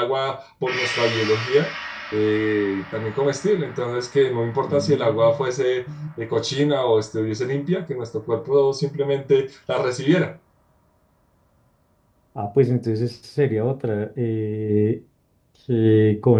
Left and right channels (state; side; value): identical; both; correlation 1.00